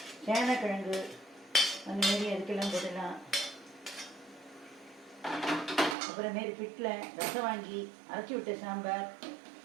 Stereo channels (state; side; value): drops out; left; at 6.0 s